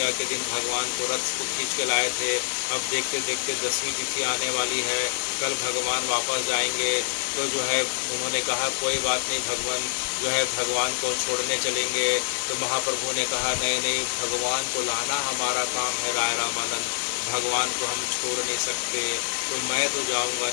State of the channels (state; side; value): silent; right; 56 dB below the other